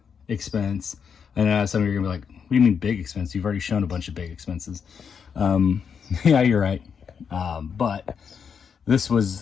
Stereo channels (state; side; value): quieter; right; 6.7 dB